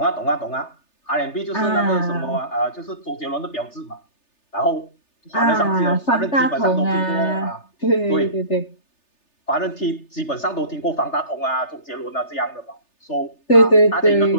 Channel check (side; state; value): right; late; 3.3 ms